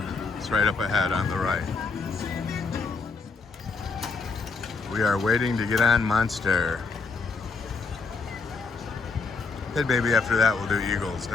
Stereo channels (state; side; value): quieter; right; 4.4 dB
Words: It's right up ahead on the right. We are waiting to get on Monster. Then maybe after that we'll do Eagles